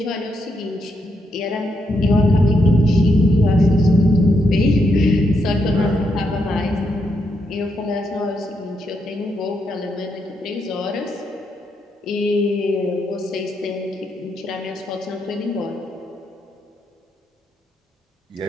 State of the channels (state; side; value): normal; both; correlation 0.79